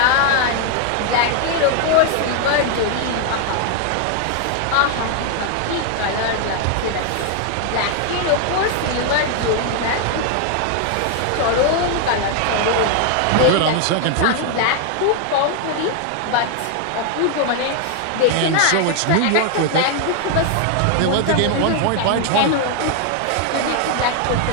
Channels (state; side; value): different; both; correlation 0.00